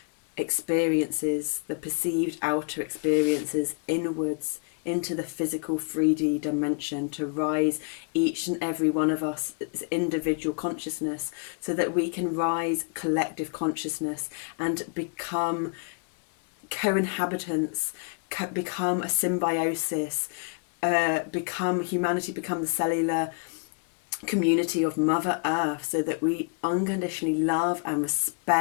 experiences, the perceived outer experiences, inwards into the physical 3D dimension, to rise each and every one of us as individual consciousness, so that we can rise collective consciousness and become co-inhabitants, become a symbiosis, become humanity, become the cellular community of Mother Earth, so that we unconditionally love and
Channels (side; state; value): right; quieter; 39.9 dB